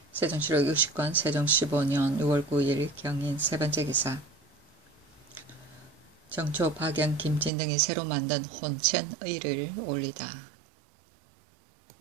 세종실록 60권 세종 15년 6월 9일 경인 세 번째 기사 정초, 박영, 김진 등이 새로 만든 혼천의를 올리다.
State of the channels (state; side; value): drops out; left; at 7.5 s